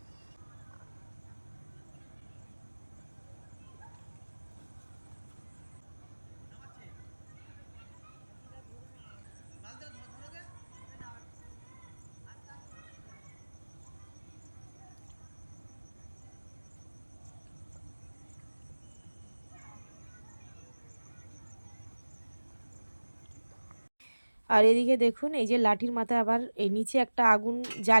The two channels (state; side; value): inverted; both; correlation -1.00